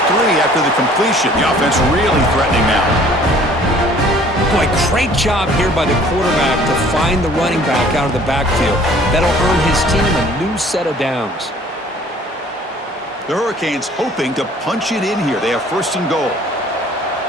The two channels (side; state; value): both; normal; correlation 0.54